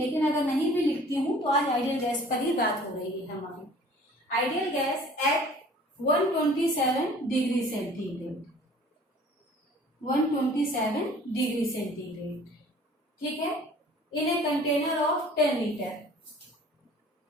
अगर नहीं भी लिखती हूँ तो आज आइडियल गैस पर ही बात हो रही है हमारी। Ideal gas at 127 degree centigrade, 127 degree centigrade. ठीक है, in a container of 10 liter,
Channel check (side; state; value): both; normal; correlation 0.49